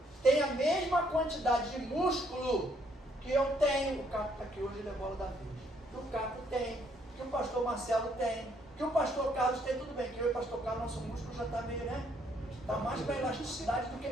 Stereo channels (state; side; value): normal; both; correlation 0.69